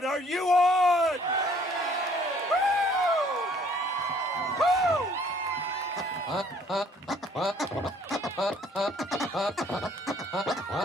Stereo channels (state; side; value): normal; both; correlation 0.60